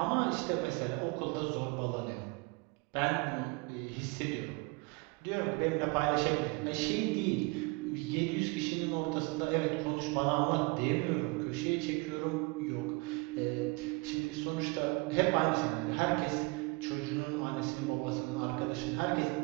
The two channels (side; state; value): left; quieter; 28.9 dB